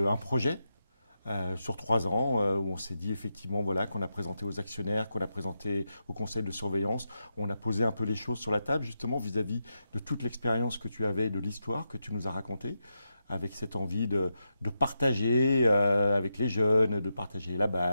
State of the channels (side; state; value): both; inverted; correlation -0.87